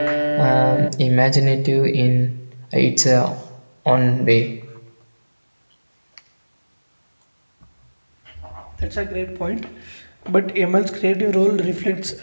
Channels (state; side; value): inverted; both; correlation -1.00